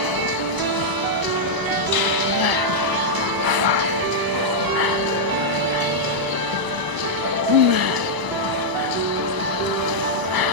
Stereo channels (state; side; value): late; left; 1.0 ms